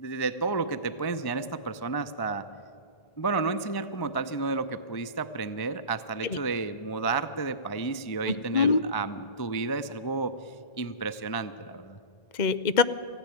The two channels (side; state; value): right; late; 1.1 ms